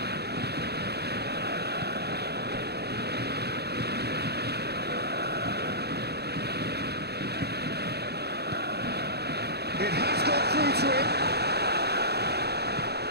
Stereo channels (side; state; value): left; late; 0.47 ms